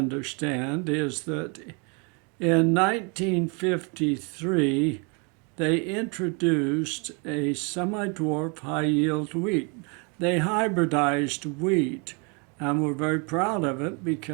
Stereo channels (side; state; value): left; quieter; 33.7 dB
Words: is that in 1953, they introduced a semi dwarf high yield wheat. They hybridized wheat and were very proud of it